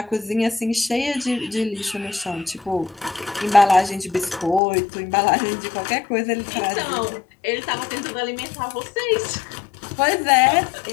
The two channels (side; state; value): right; drops out; at 4.6 s